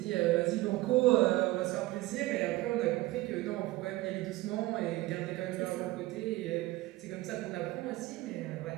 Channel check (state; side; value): quieter; left; 18.7 dB